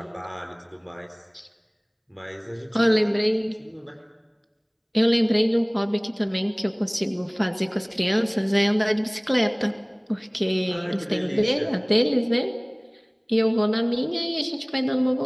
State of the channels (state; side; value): identical; both; correlation 1.00